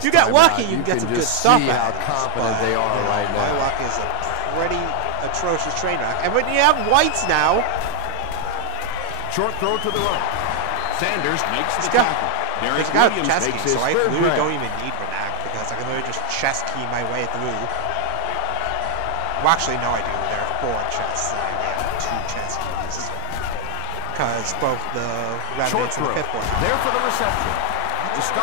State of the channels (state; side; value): different; both; correlation 0.00